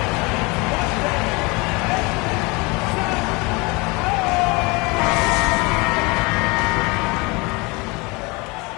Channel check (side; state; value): right; quieter; 26.6 dB